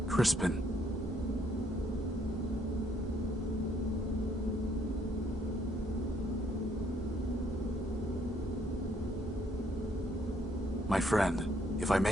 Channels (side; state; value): both; normal; correlation 0.68